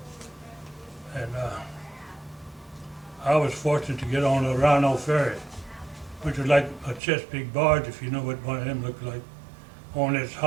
And I was fortunate to get on a Rhino ferry, which was like a Chesapeake barge, if you know what one of them looked like. Only it's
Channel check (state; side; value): drops out; left; at 7.0 s